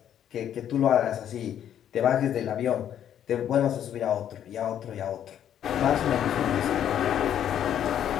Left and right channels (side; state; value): right; quieter; 10.1 dB